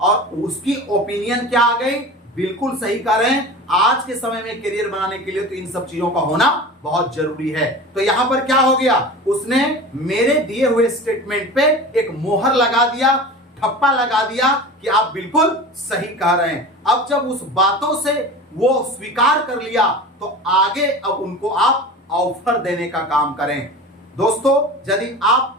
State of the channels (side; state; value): both; normal; correlation 0.34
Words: उसकी ओपिनियन क्या आ गई, बिल्कुल सही कह रहे हैं। आज के समय में करियर बनाने के लिए तो इन सब चीजों का होना बहुत जरूरी है। तो यहां पर क्या हो गया, उसने मेरे दिए हुए स्टेटमेंट पे एक मोहर लगा दिया, ठप्पा लगा दिया कि आप बिल्कुल सही कह रहे हैं। अब जब उस बातों से वो स्वीकार कर लिया तो आगे अब उनको आप ऑफर देने का काम करें। दोस्तों, यदि आप